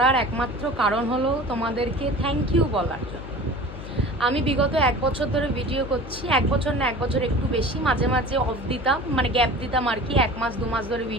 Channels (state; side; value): noise; left; hum, 12 dB below the sound